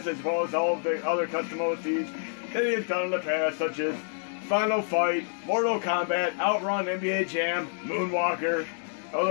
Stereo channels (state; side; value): silent; right; 59 dB below the other